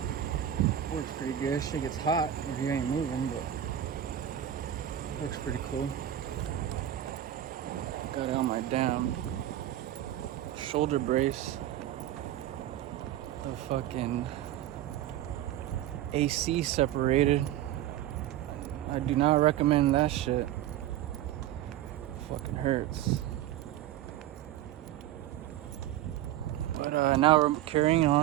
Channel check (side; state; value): left; quieter; 12.1 dB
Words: Works pretty good. Shit gets hot if you ain't moving, but works pretty cool. Got out my damn shoulder brace. The fucking AC separated. I do not recommend that shit. Fucking hurts. But now we're carrying